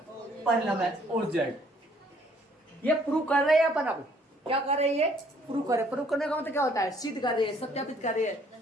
पर लंब है और जेड, ये प्रूव कर रहे हैं अपन। अब क्या कर रहे हैं ये? प्रूव कर रहे। प्रूव करने का मतलब क्या होता है? सिद्ध कर रहे हैं, सत्यापित कर रहे हैं,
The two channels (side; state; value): both; normal; correlation 0.62